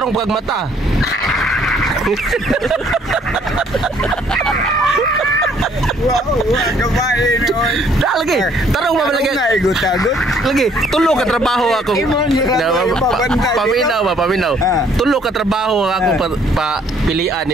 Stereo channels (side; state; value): both; normal; correlation 0.63